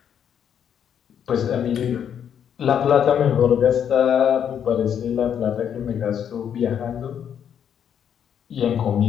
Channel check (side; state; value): right; quieter; 8.7 dB